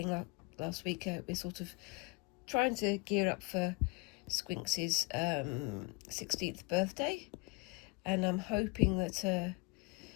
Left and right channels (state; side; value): quieter; right; 27.5 dB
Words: last week, we're sort of trying to gear up for Squinks' 16th birthday, and I'm hoping that